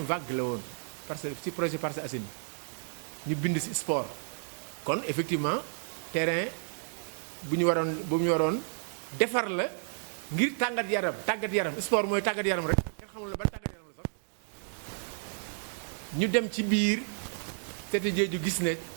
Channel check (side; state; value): left; silent; digital silence